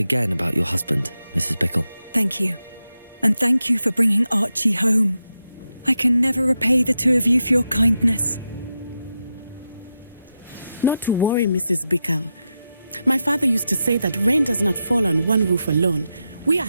about your husband, Mrs. Bickle. Thank you. And thank you for bringing Archie home. I can never repay the two of you for your kindness. Not to worry, Mrs. Bickle. My father used to say that rain does not fall on one roof alone. We are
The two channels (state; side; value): inverted; both; correlation -0.88